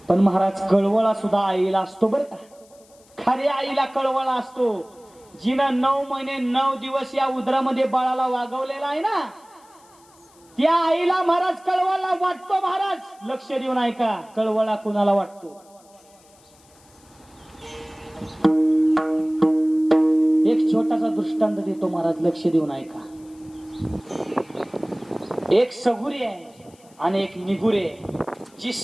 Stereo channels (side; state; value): left; noise; hiss, 29 dB below the sound